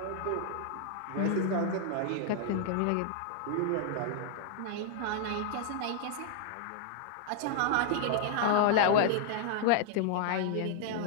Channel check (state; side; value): different; both; correlation 0.00